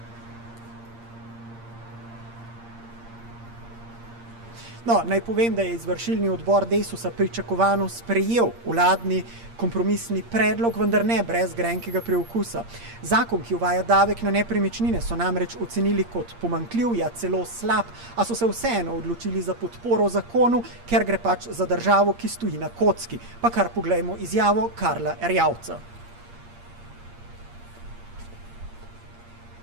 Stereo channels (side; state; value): left; late; 8.6 ms